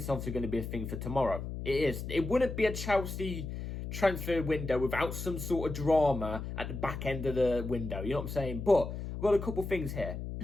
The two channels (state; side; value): noise; left; hum, 6 dB below the sound